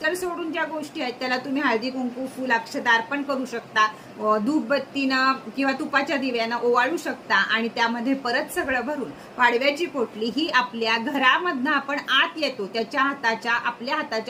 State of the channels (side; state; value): both; identical; correlation 1.00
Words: सोडून ज्या गोष्टी आहेत त्याला तुम्ही हळदी कुंकू फुल अक्षता अर्पण करू शकता, धूपबत्तीनं किंवा तुपाच्या दिव्यानं ओवाळू शकता आणि त्यामध्ये परत सगळं भरून पाडव्याची पोटली ही आपल्या घरामधनं आपण आत येतो त्याच्या आपल्या